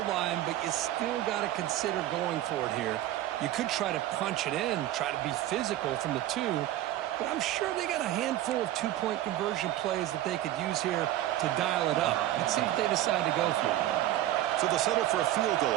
line, but you still got to consider going for it here. You could try to punch it in, try to be physical from the 2, but I'm sure they got a handful of 2-point conversion plays that they could use here to dial it up. Let's see what they decide to go for. So they'll settle for a field goal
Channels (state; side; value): quieter; left; 13.8 dB